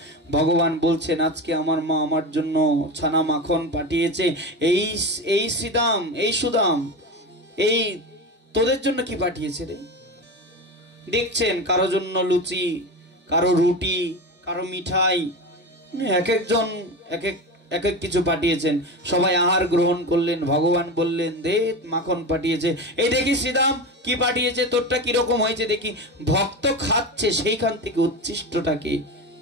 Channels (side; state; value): both; normal; correlation 0.24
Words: ভগবান বলছেন, আজকে আমার মা আমার জন্য ছানা মাখন পাঠিয়েছে। এই শ্রীদাম, এই সুদাম, এই তোদের জন্য কি পাঠিয়েছে রে? দেখছেন কারো জন্য লুচি, কারো রুটি, কারো মিঠাই, এক একজন এক এক কিছু পাঠিয়েছেন। সবাই আহার গ্রহণ করলেন। ভগবান বললেন, দে মাখন পাঠিয়েছে। এই দেখি শ্রীদাম কি পাঠিয়েছে, তোরটা কিরকম হয়েছে দেখি। ভক্ত খাচ্ছে, সেইখান থেকে উচ্ছিষ্টটাকে